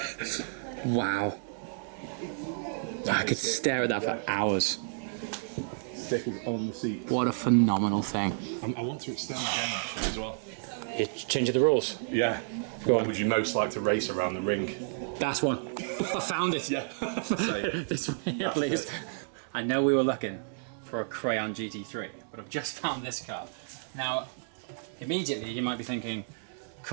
Wow. I could stare at that for hours. Stickers on the seat. What a phenomenal thing. I want to extend the game actually as well. You're changing the rules. Yeah. Go What on. would you most like to race around the ring? That's one. I found it. Yeah. Same. This one here, please. I know we were looking for a Crayon GT3, but I've just found this car. Now, immediately you might be thinking,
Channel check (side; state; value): left; silent; digital silence